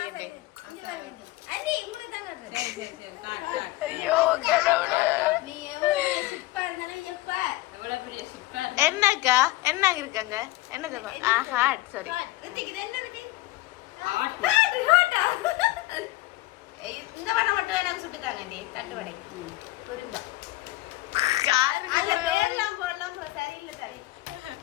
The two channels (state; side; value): quieter; right; 18.7 dB